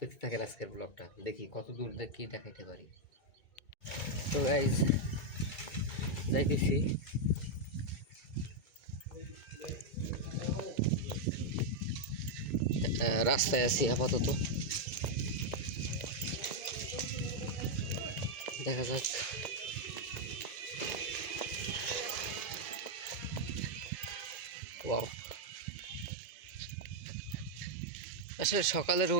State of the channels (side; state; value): right; late; 2.2 ms